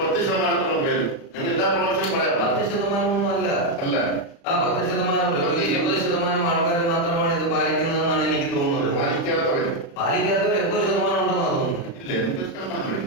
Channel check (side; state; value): right; late; 35 ms